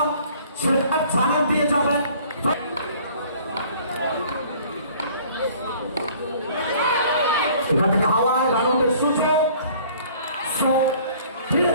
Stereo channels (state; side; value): inverted; both; correlation -0.53